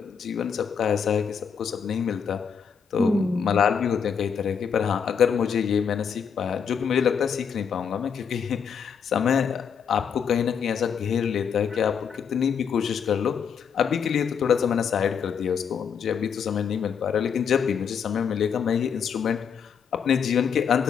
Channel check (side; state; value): right; quieter; 7.0 dB